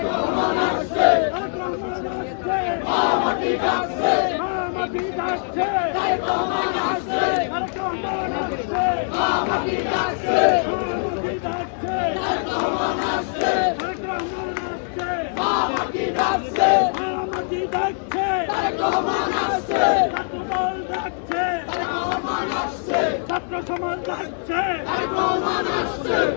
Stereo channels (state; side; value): silent; right; 64 dB below the other